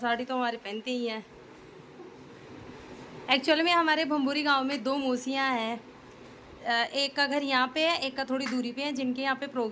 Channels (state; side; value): identical; both; correlation 1.00